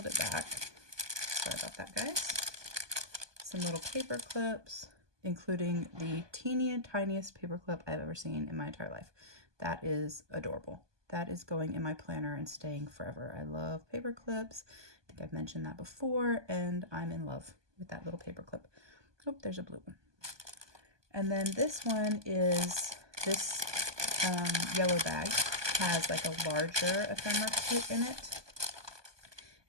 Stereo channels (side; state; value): left; late; 1.2 ms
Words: it back. Sorry about that, guys. Some little paper clips, including the tiniest paper clip I've ever seen in my entire life. That is adorable. That is going in my planner and staying forever. I love paper clips. I think I've mentioned that before, and I'm in love with that little paper clip. Oh, there's a blue one. And then this one is, this yellow bag has like a larger ephemera kit in it.